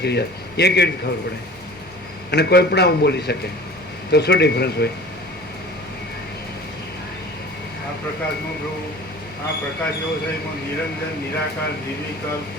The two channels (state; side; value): normal; both; correlation 0.42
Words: રહ્યા એ કેવી રીતે ખબર પડે? અને કોઈ પણ આવું બોલી શકે તો શું ડિફરન્સ હોય? આ પ્રકાશમાં પ્રભુ, આ પ્રકાશ એવો છે એમાં નિરંજન, નિરાકાર, નિર્વિકલ્પ,